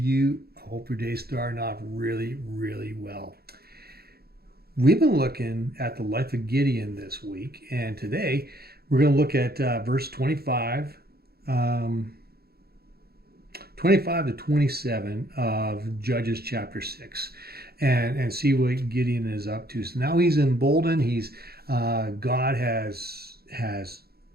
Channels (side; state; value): left; late; 0.46 ms